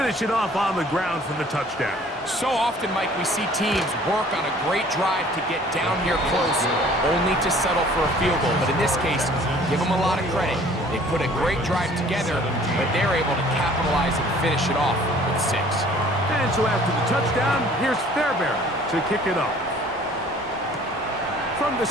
it off on the ground for the touchdown. So often, Mike, we see teams work on a great drive to get down here close, only to settle for a field goal. But in this case, give them a lot of credit. They put a great drive together, but they're able to capitalize and finish it off with 6. And so after the touchdown, here's Fairbairn to kick it off. From the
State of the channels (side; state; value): both; normal; correlation 0.53